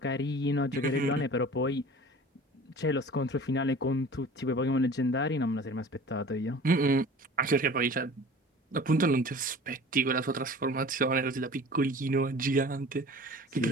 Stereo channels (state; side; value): normal; both; correlation 0.43